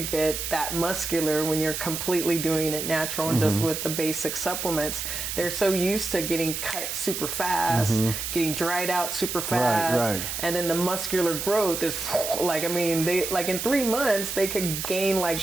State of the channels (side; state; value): right; noise; hiss, 4 dB below the sound